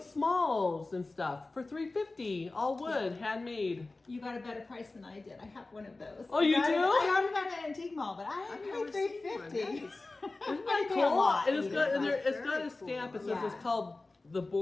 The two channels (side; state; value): right; quieter; 3.3 dB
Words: smalls and stuff for $3.50, all wood, handmade. You got a better price than I did. I have one of those. Oh, you I got do? it- I got it at an antique mall, but I I've paid never seen one. $3.50. That is- Isn't I that pay a cool? lot And it's either, got and but- there, it's got Very a stamp. It cool. says Yeah. it's called the